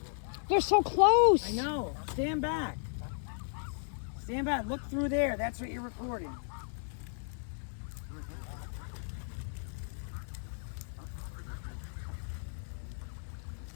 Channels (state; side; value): silent; right; digital silence